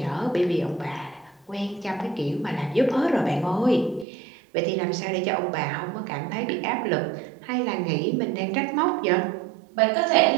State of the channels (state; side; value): drops out; left; at 4.0 s